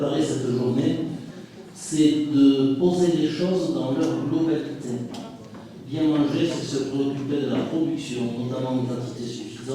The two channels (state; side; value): identical; both; correlation 1.00